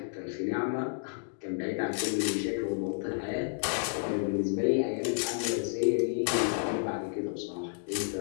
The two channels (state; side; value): silent; right; digital silence